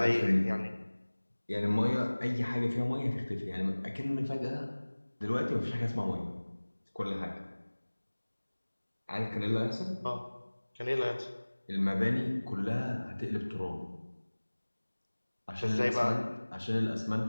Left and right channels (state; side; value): inverted; both; correlation -1.00